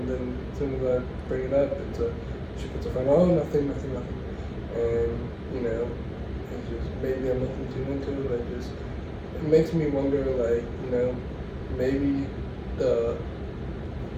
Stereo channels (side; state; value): both; identical; correlation 1.00